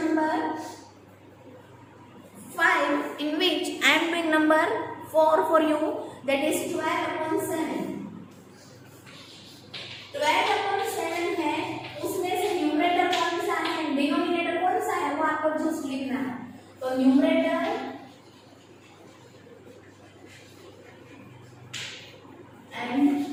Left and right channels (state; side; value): identical; both; correlation 1.00